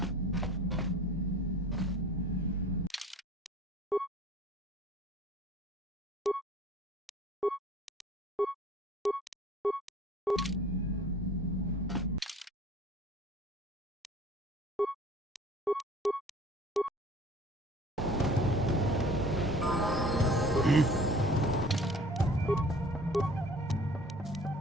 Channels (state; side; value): normal; both; correlation 0.48